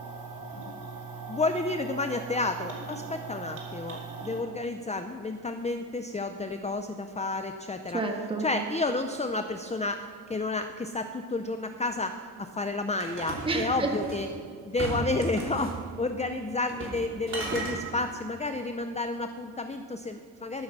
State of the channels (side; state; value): both; normal; correlation 0.26